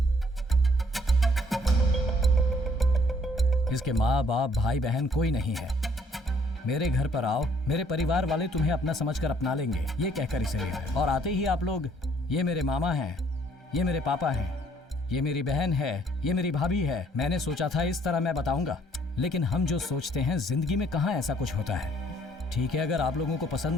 इसके माँ बाप, भाई बहन कोई नहीं है। मेरे घर पर आओ, मेरे परिवार वाले तुम्हें अपना समझकर अपना लेंगे, ये कहकर इसे ले आए। और आते ही आप लोग, ये मेरे मामा हैं, ये मेरे पापा हैं, ये मेरी बहन है, ये मेरी भाभी है। मैंने सोचा था इस तरह मैं बताऊंगा, लेकिन हम जो सोचते हैं जिंदगी में कहाँ ऐसा कुछ होता है। ठीक है, अगर आप लोगों को पसंद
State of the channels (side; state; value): both; normal; correlation 0.62